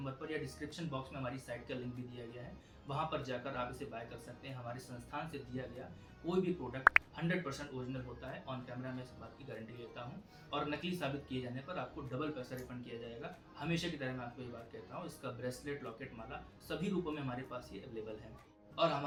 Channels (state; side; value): identical; both; correlation 1.00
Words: पर या डिस्क्रिप्शन बॉक्स में हमारी साइट का लिंक भी दिया गया है, वहाँ पर जाकर आप इसे बाय कर सकते हैं। हमारे संस्थान से दिया गया कोई भी प्रोडक्ट 100% ओरिजिनल होता है। ऑन कैमरा मैं इस बात की गारंटी लेता हूँ, और नकली साबित किए जाने पर आपको डबल पैसा रिफंड किया जाएगा। हमेशा की तरह मैं आपको ये बात कहता हूँ, इसका ब्रेसलेट, लॉकेट, माला सभी रूपों में हमारे पास ये अवेलेबल है। और